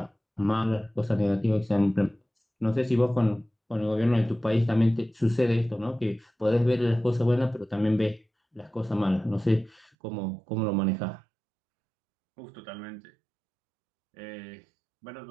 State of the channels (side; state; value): left; drops out; at 9.9 s